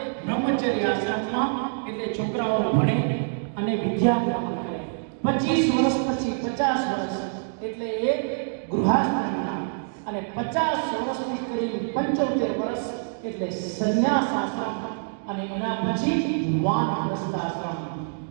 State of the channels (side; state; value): left; silent; digital silence